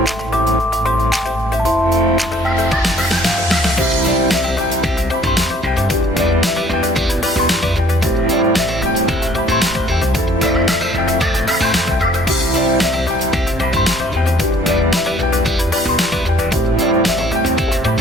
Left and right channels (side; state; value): both; normal; correlation 0.58